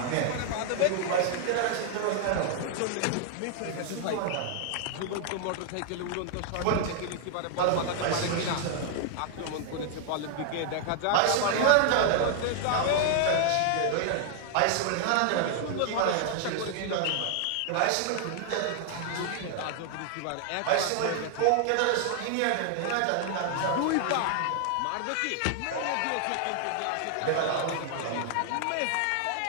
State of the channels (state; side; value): different; both; correlation 0.00